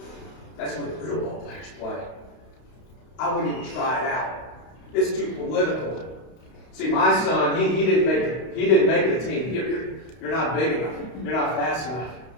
That's where the real ball players play. I wouldn't even try it out. It's too political. See, my son, he didn't make the team. You're not big enough. You're not fast enough.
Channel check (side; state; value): right; late; 32 ms